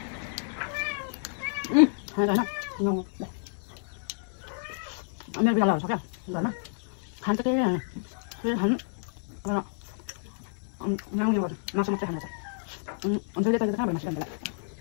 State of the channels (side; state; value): right; silent; 58 dB below the other